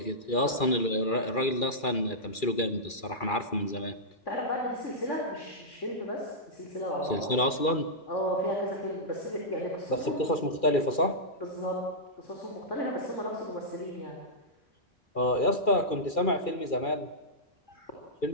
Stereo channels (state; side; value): late; right; 2.4 ms